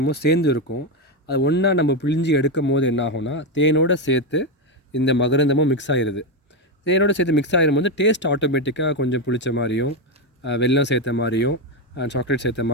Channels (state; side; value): normal; both; correlation 0.09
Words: சேர்ந்து இருக்கும். அது ஒன்றா நம்ம பிழிஞ்சி எடுக்கும் போது என்ன ஆகும்னா, தேனோடு சேர்த்து இந்த மகரந்தமும் மிக்ஸ் ஆகிடுது. தேனோடு சேர்த்து மிக்ஸ் ஆகிடும்போது டேஸ்ட் ஆட்டோமேட்டிக்காக கொஞ்சம் புளிச்ச மாதிரியும், வெல்லம் சேர்த்த மாதிரியும், சாக்லேட் சேர்த்த